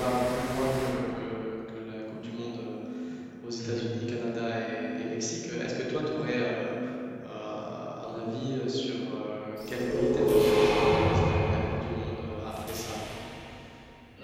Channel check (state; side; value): identical; both; correlation 1.00